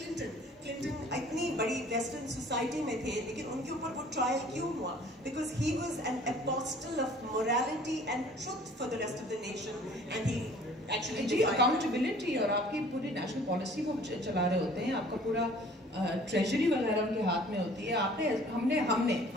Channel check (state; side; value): normal; both; correlation 0.51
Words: اتنی بڑی ویسٹرن سوسائٹی میں تھے لیکن ان کے اوپر وہ ٹرائل کیوں ہوا؟ Because he was an apostle of morality and truth for the rest of the nation and he actually جی اکاؤنٹیبلٹی. اور آپ کی پوری نیشنل پالیسی وہ چلا رہے ہوتے ہیں, آپ کا پورا ٹریجری وغیرہ ان کے ہاتھ میں ہوتی ہے. آپ نے ہم